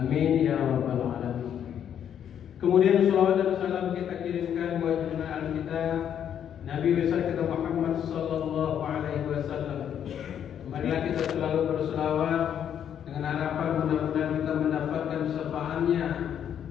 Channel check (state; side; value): quieter; right; 9.2 dB